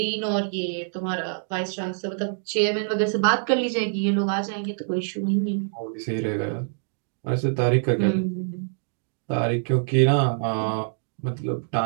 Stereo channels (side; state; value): left; silent; digital silence